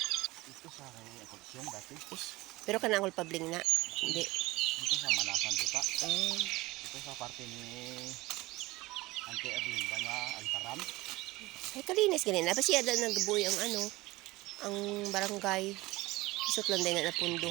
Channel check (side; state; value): left; quieter; 20.2 dB